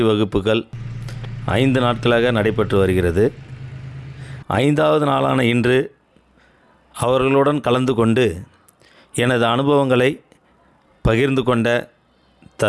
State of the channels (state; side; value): identical; both; correlation 1.00